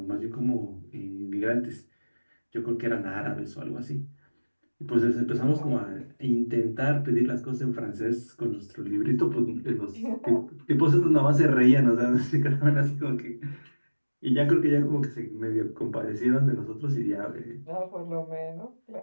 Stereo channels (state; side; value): inverted; both; correlation -1.00